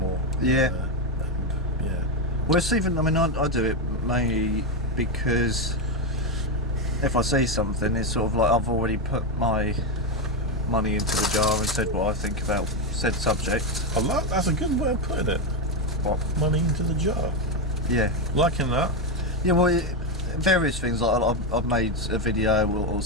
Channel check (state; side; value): normal; both; correlation 0.09